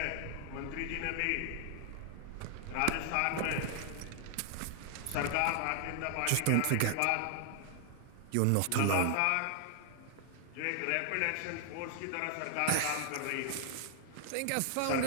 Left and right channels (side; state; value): both; different; correlation 0.00